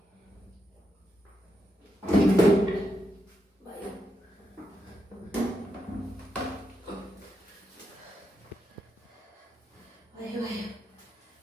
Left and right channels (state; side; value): normal; both; correlation 0.83